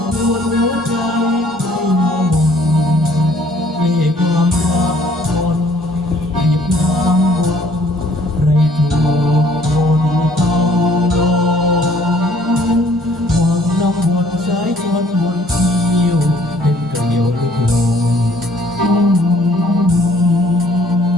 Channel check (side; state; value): both; normal; correlation 0.60